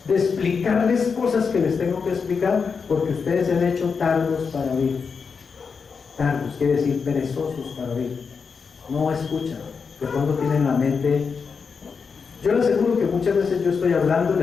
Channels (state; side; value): quieter; right; 5.5 dB